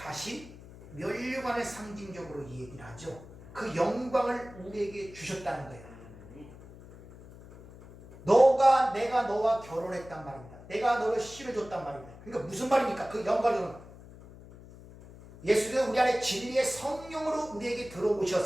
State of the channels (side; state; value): left; noise; hum, 18 dB below the sound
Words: 면류관을 상징적으로 얘기를 하죠. 그 영광을 우리에게 주셨다는 거예요. 내가 너와 결혼했단 말입니다. 내가 너를 씨를 줬단 말입니다. 그러니까 무슨 말입니까? 그 영광은 예수님은 우리 안에 진리의 성령으로 우리에게